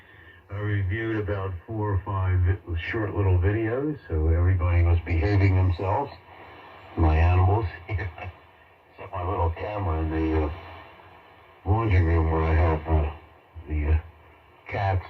I reviewed about 4 or 5 short little videos, so everybody was behaving themselves. My animals. Except my little camera in the laundry room where I have the cats.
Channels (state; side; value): identical; both; correlation 1.00